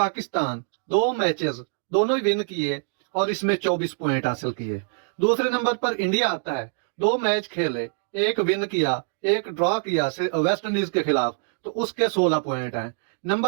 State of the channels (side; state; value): left; silent; digital silence